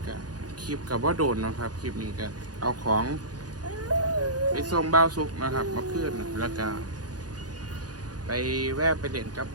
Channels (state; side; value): late; left; 0.69 ms